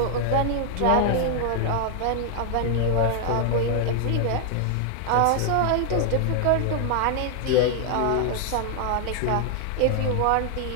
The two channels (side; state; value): both; different; correlation 0.00